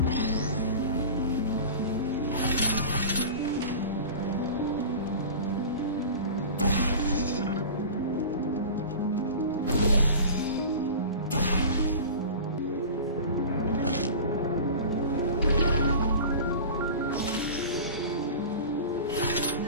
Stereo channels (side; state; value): both; inverted; correlation -0.35